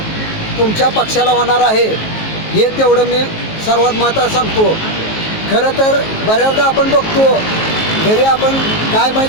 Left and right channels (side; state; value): right; late; 19 ms